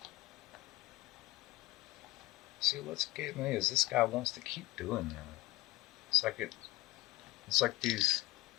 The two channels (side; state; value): right; quieter; 18.2 dB